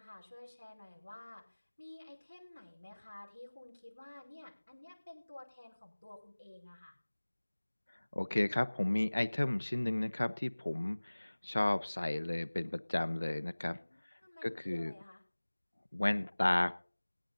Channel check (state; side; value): inverted; both; correlation -1.00